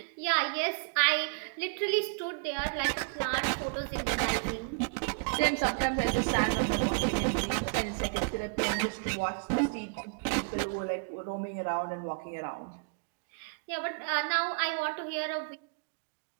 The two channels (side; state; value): left; quieter; 38.3 dB